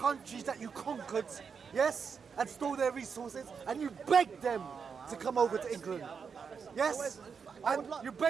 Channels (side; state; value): left; quieter; 6.1 dB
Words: that you conquered, yes, and stole their resources, and you begged them to come over to England. Yes, and you